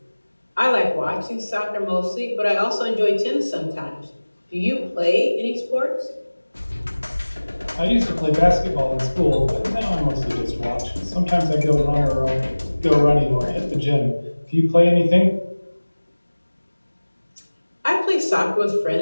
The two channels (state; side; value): inverted; both; correlation -1.00